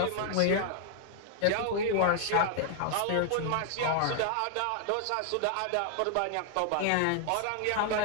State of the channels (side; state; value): both; different; correlation 0.00